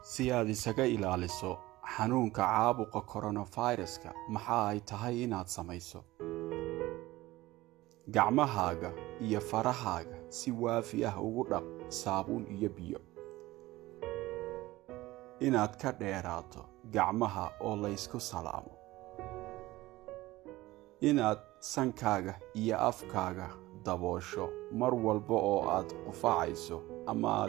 Si aad isaga ilaaliso xanuunka caabuqa coronavirus-ka, maxaa ay tahay inaad samayso? Gacmahaaga iyo farahaaga si waafi ah ugu dhaq saabuun iyo biyo. Inaad ka dheeraato gacmaha oo la isku salaamo. Inaad sankaaga iyo afkaaga daboosho mar walba oo aad qufacayso ama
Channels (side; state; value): left; quieter; 18.2 dB